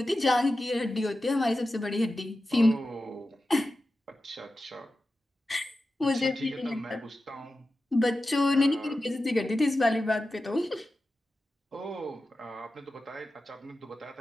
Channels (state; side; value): normal; both; correlation 0.93